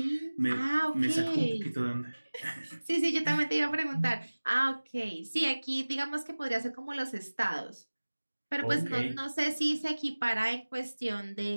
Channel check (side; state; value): both; inverted; correlation -1.00